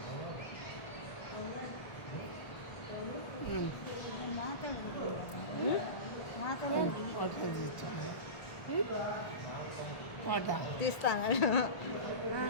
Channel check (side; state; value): right; late; 1.2 ms